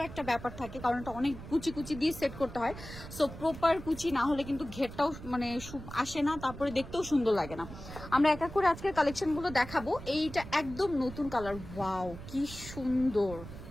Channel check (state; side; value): noise; right; rumble, 13 dB below the sound